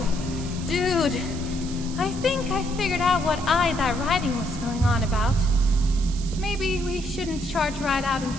Dude! I think I figured out what that writing was going on about. Maybe we shouldn't charge right out in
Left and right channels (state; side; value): noise; right; hiss, 14 dB below the sound